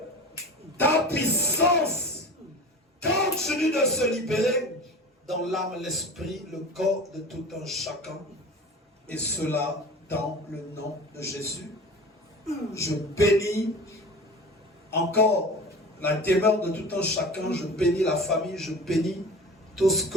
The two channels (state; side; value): normal; both; correlation 0.36